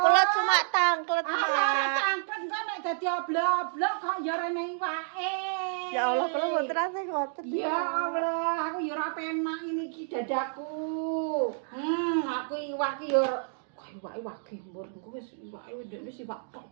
cuma tangklet, Ah, Mak. tangklet kok nek dadi oblok-oblok kok ya rene iwake. Ya Allah, kula mboten ate ngoten. Ya Allah, aku ya ora penak ini iki dadaku. Aku iwak iki ya kok iwake wage mbur engko wis iwake ndekne iwak tok.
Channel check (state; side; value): silent; left; digital silence